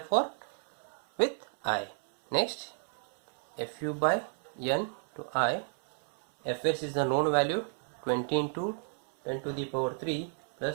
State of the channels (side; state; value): left; silent; 56 dB below the other